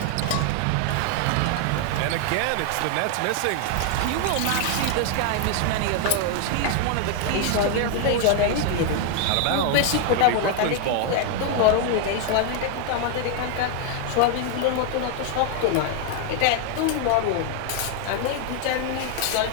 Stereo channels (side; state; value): both; different; correlation 0.00